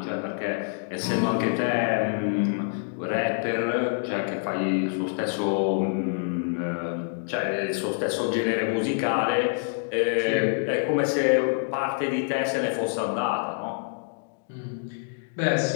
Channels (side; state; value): right; silent; digital silence